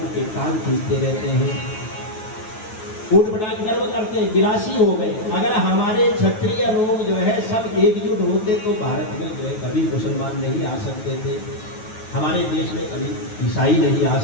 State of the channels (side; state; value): right; late; 9.3 ms